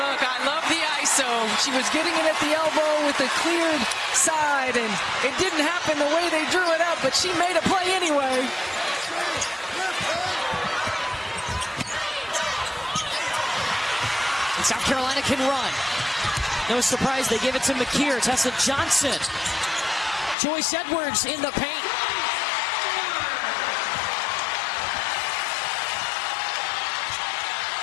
I love the ISO. She was getting it at the elbow with the cleared side, and it didn't happen the way they drew it up, but she made a play anyway. And South Carolina can run. No surprise, they give it to Makeer. Tessa Johnson. Joyce Edwards in the paint.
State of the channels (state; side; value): drops out; right; at 20.4 s